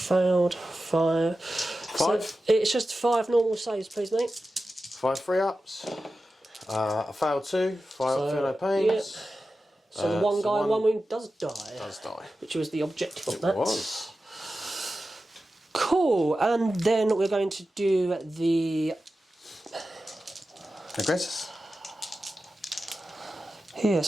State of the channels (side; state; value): both; normal; correlation 0.93